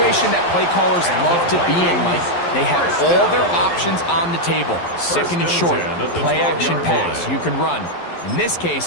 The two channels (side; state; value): right; late; 11 ms